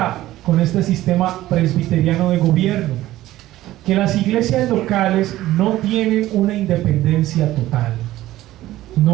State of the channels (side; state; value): left; quieter; 15.4 dB